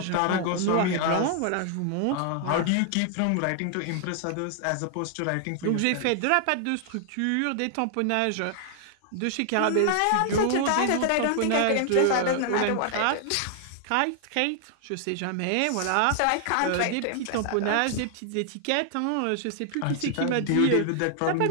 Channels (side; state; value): both; different; correlation 0.00